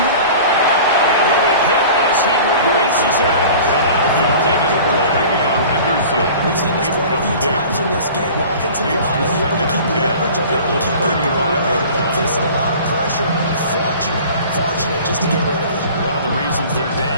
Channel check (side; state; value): both; inverted; correlation -0.42